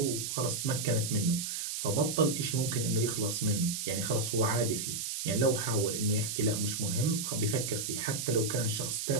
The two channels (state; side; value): noise; right; hiss, 3 dB below the sound